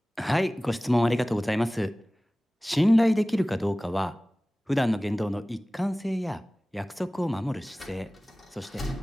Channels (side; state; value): both; normal; correlation 0.98